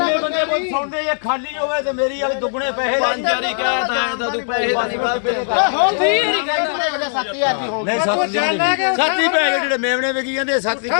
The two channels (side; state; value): right; silent; digital silence